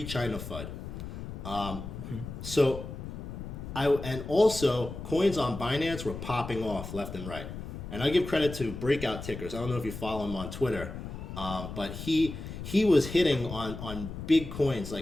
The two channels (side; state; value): left; noise; rumble, 9 dB below the sound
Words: FUD. So and also coins on Binance were popping off left and right. And I give credit to Breakout Tickers. I don't know if you follow him on Twitter, but he was hitting on big coins